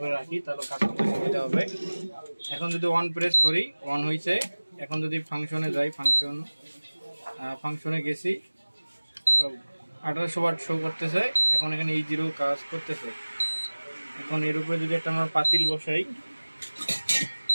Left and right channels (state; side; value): inverted; both; correlation -1.00